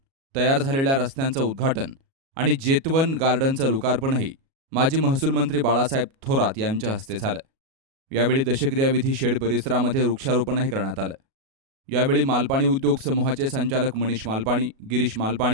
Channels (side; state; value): left; late; 37 ms